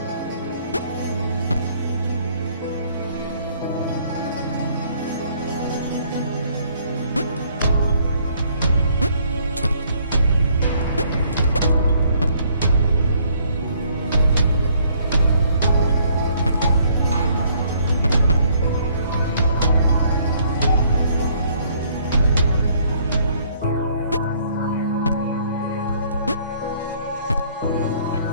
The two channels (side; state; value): both; inverted; correlation -0.64